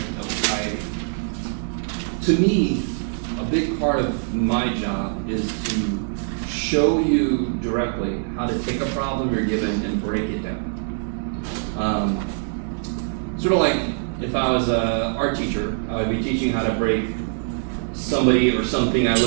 To me, a big part of my job is to show you directly how to take a problem you're given and break it down. Sort of like if I was an art teacher, I would be teaching how to break somebody or something I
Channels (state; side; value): silent; left; 63 dB below the other